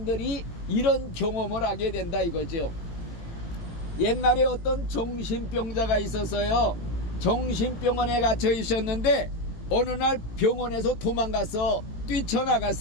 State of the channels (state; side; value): late; right; 18 ms